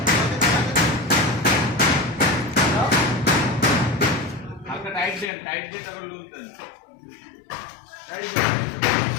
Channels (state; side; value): drops out; right; at 5.3 s